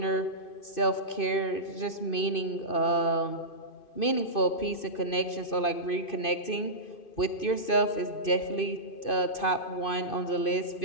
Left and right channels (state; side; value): late; right; 2.5 ms